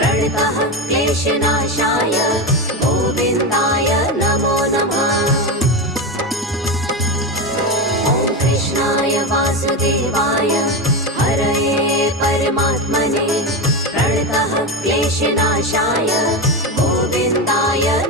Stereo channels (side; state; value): both; normal; correlation 0.17